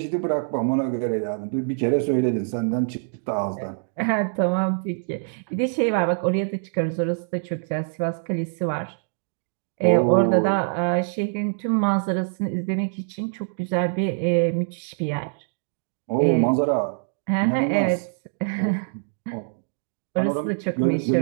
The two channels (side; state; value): left; silent; digital silence